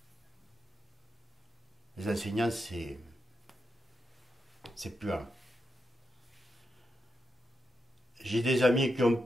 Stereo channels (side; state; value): both; normal; correlation 0.86